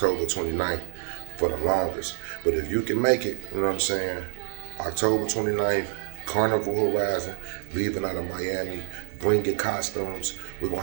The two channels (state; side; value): silent; left; digital silence